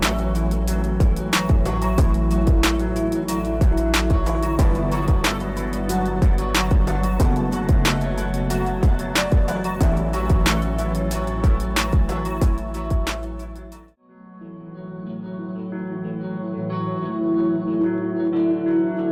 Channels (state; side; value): identical; both; correlation 1.00